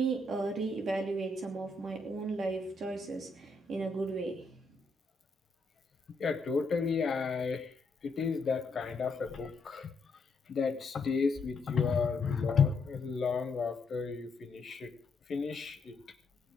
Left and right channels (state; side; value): quieter; right; 3.2 dB